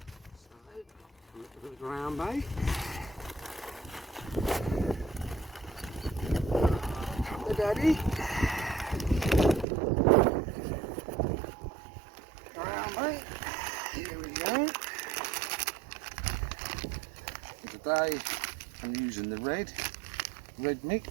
little bit of ground bait. Come the daddy. Ground bait. Here we go. Today I'm using the red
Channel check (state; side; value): drops out; left; at 9.7 s